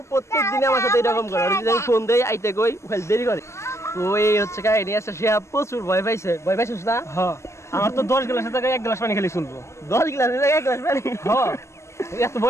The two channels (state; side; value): late; right; 0.13 ms